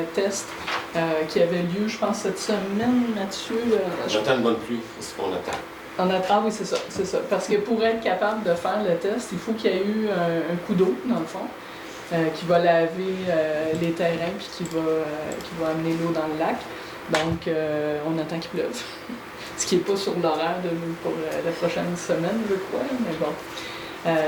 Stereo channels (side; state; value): both; identical; correlation 1.00